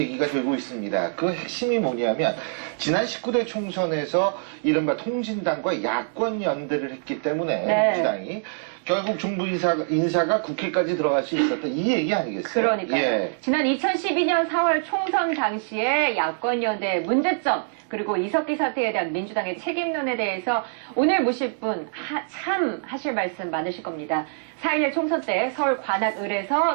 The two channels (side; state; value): left; silent; digital silence